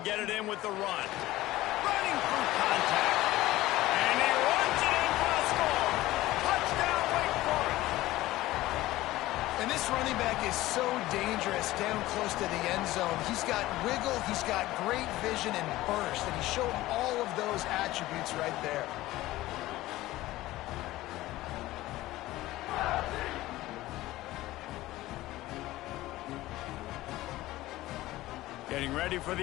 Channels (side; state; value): right; quieter; 17.0 dB